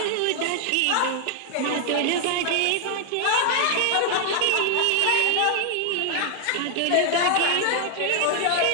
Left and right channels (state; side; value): different; both; correlation 0.00